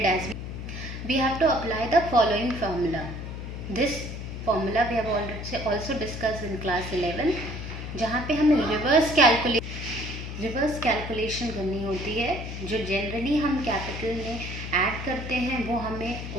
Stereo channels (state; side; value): noise; left; hum, 7 dB below the sound